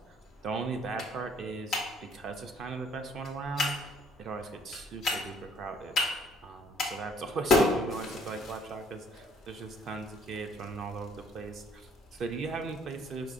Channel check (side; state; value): both; normal; correlation 0.62